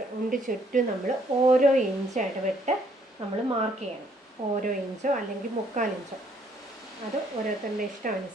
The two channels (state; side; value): normal; both; correlation 0.67